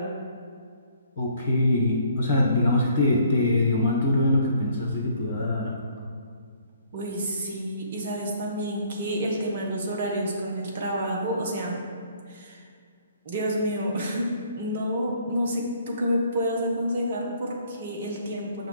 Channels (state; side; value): inverted; both; correlation -0.61